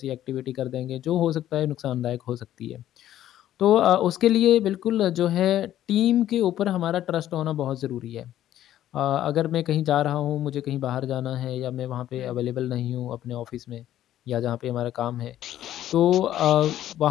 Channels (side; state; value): right; quieter; 12.4 dB